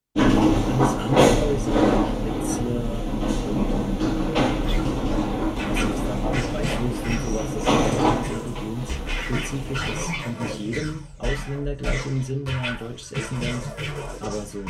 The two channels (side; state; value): both; identical; correlation 1.00